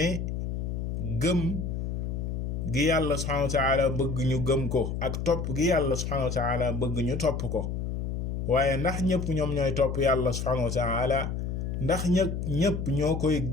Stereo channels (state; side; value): noise; left; hum, 3 dB below the sound